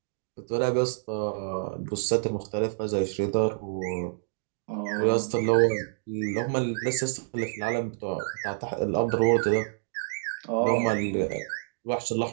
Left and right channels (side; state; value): left; silent; digital silence